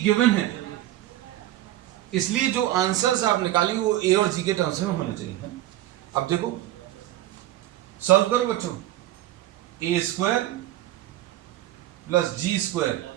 गिवन है, इसलिए जो आंसर्स आप निकालेंगे वो a और g के टर्म्स में होने चाहिए। अब देखो, सॉल्व करो बच्चों। A square plus G square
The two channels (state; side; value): quieter; left; 14.6 dB